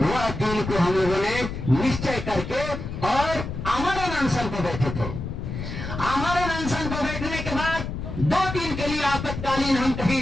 दिन को हम लोगों ने निश्चय करके और आमरण अनशन को बैठे थे। आमरण अनशन को बैठने के बाद 2 दिन के लिए आपातकालीन हम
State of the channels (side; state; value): left; noise; rumble, 6 dB below the sound